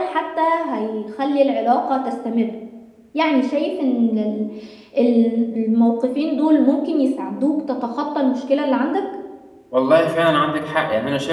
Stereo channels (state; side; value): identical; both; correlation 1.00